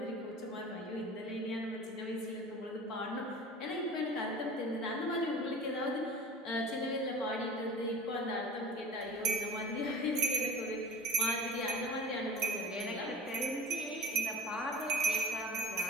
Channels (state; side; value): normal; both; correlation 0.36